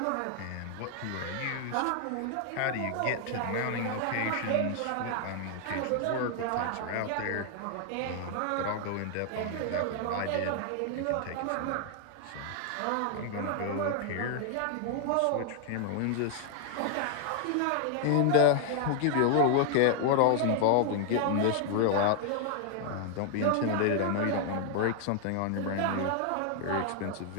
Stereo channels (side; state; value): both; different; correlation 0.00